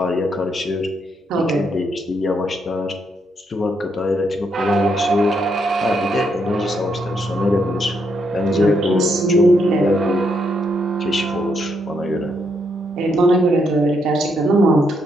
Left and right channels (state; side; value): normal; both; correlation 0.77